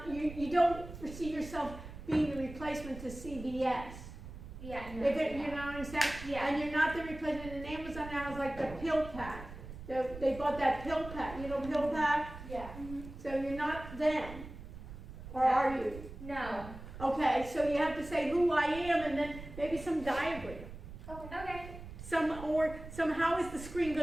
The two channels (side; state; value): right; noise; rumble, 13 dB below the sound